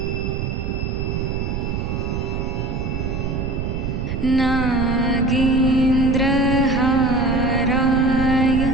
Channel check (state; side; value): noise; right; rumble, 3 dB below the sound